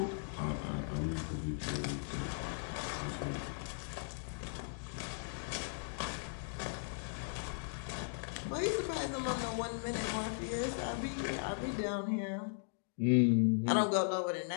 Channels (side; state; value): right; silent; digital silence